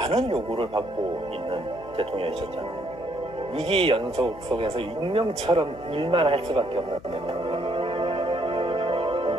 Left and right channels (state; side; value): noise; left; hum, 21 dB below the sound